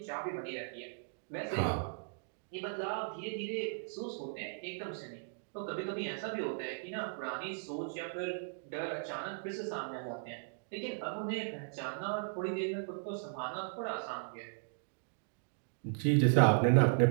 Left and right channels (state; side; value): silent; left; digital silence